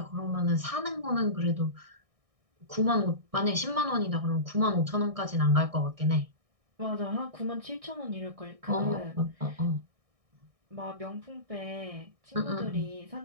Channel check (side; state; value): left; late; 1.6 ms